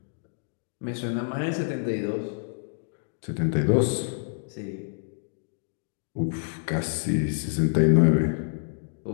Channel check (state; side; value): silent; right; digital silence